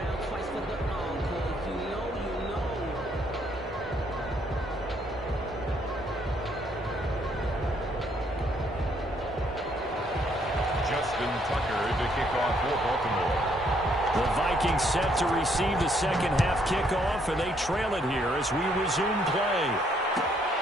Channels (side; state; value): both; normal; correlation 0.69